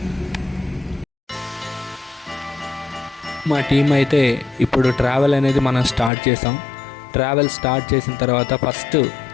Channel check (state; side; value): drops out; right; at 6.1 s